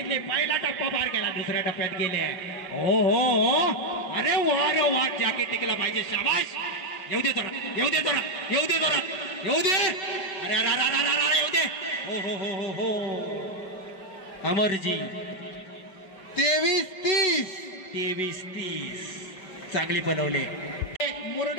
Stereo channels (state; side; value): late; right; 5.3 ms